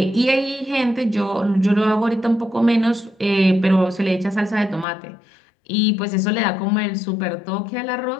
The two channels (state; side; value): drops out; right; at 4.9 s